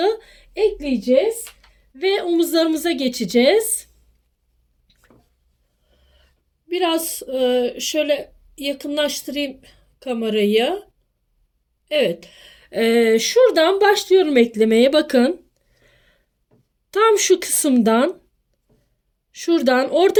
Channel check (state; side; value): identical; both; correlation 1.00